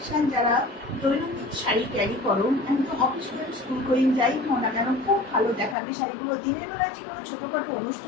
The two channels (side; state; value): right; drops out; at 5.8 s